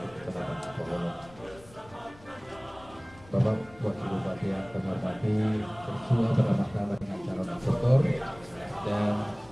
Kecamatan Cipoholong. Bapak Wakil Bupati yang kami hormati, bersua bersama-sama dengan calon aktor dan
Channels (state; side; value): noise; left; rumble, 23 dB below the sound